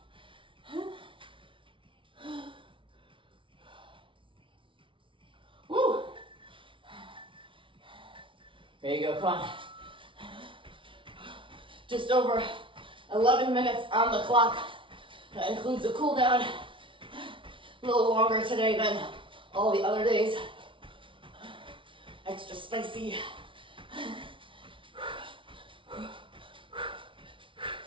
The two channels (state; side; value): late; left; 0.25 ms